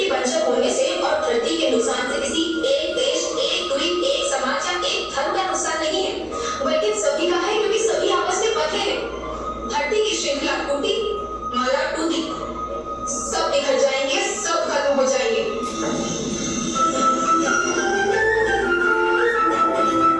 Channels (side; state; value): both; identical; correlation 1.00